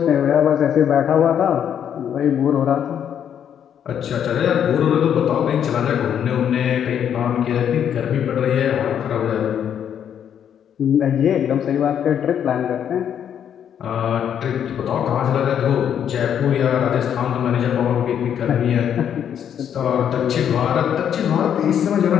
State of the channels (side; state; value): right; quieter; 9.0 dB